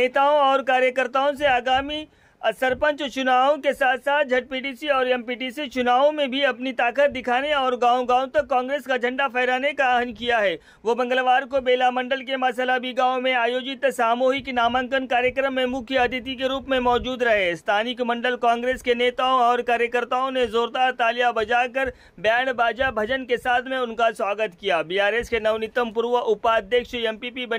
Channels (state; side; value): identical; both; correlation 1.00